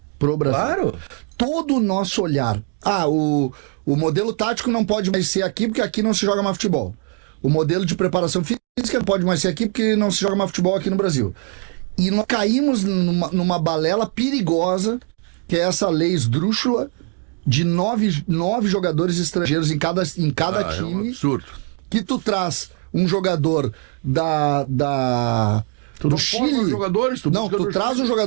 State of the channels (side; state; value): left; quieter; 39.9 dB